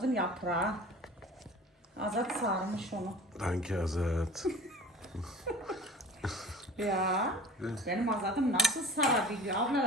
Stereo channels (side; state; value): both; normal; correlation 0.41